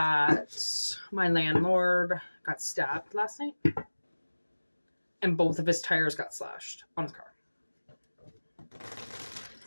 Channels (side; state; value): both; inverted; correlation -1.00